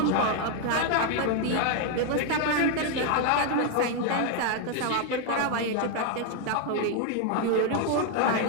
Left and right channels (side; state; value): both; different; correlation 0.01